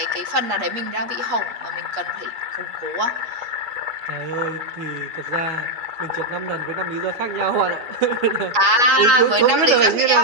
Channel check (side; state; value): left; late; 8.4 ms